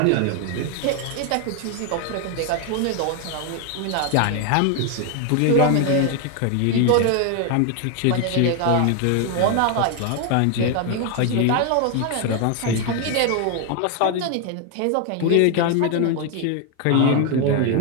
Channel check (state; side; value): different; both; correlation 0.01